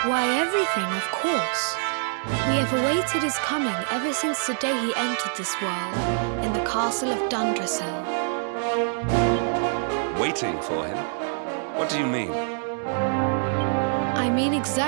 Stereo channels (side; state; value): left; silent; digital silence